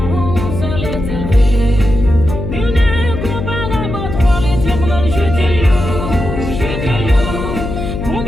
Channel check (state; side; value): noise; left; hum, 5 dB below the sound